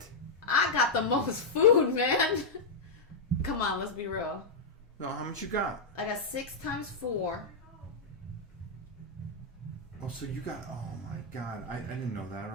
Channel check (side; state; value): right; quieter; 3.4 dB